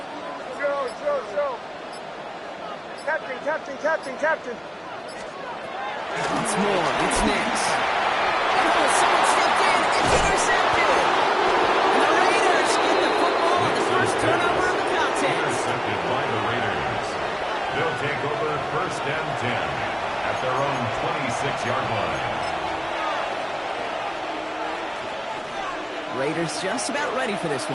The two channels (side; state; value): both; identical; correlation 1.00